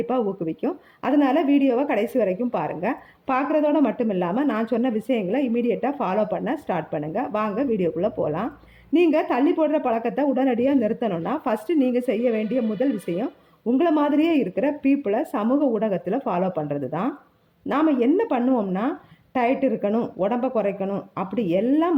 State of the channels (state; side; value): identical; both; correlation 1.00